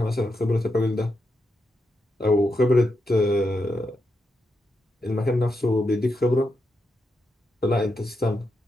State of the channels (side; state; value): both; normal; correlation 0.85